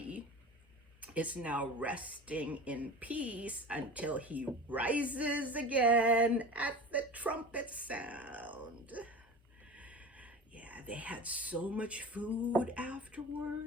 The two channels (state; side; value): normal; both; correlation 0.35